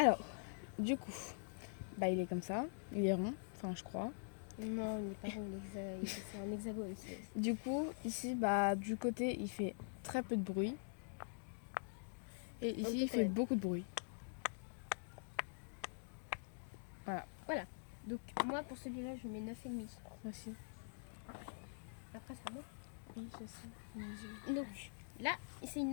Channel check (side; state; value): right; silent; digital silence